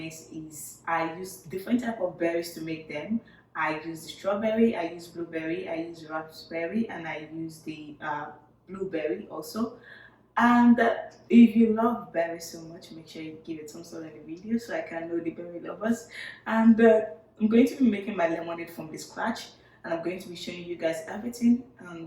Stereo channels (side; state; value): both; identical; correlation 1.00